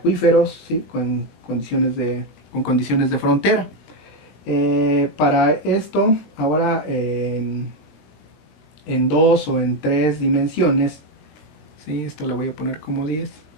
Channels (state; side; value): late; right; 20 ms